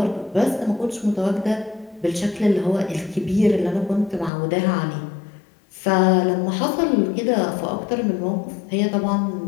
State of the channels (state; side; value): drops out; right; at 4.3 s